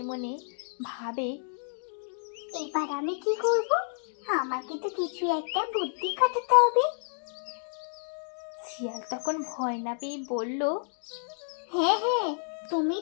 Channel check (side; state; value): right; silent; digital silence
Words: মনে ভাবে, এবার আমি কি করব? আমাকে তো কিছু একটা বুদ্ধি খাটাতে হবে। শিয়াল তখন ভয় না পেয়ে বলল, হ্যাঁ হ্যাঁ, তুমি